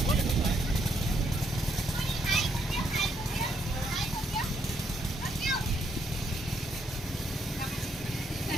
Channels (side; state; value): both; normal; correlation 0.74